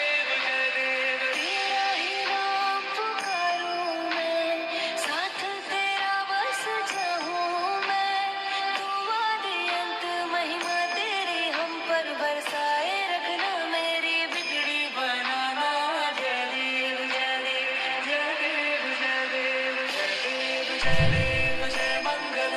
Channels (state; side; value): identical; both; correlation 1.00